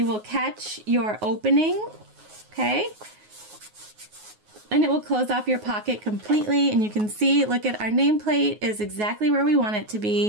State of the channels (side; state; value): left; late; 9.5 ms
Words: will catch your opening, okay? And it will close off your pocket completely, and you can see, look at our nameplate is exactly where we want it to